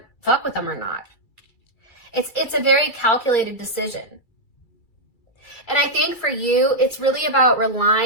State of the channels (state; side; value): late; right; 2.3 ms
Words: fuck with them or not. It's a very calculated decision. And I think for you, it's really about